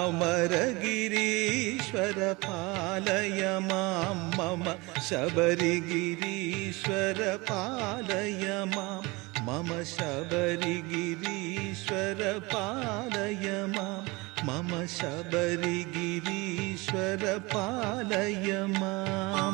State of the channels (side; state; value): left; quieter; 24.4 dB